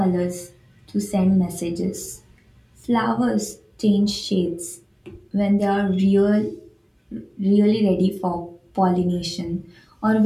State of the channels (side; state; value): both; identical; correlation 1.00